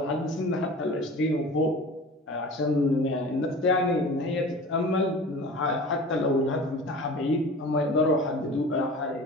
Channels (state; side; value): normal; both; correlation 0.38